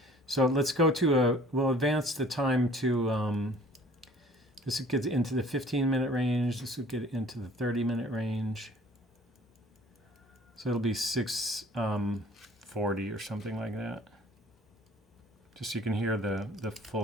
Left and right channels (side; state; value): both; normal; correlation 0.51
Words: So let's go to we'll advance the time to, this will get into the 15-minute range. This will get into the 30-minute range. So it'll be 6:40 or something like that. just so you can hear the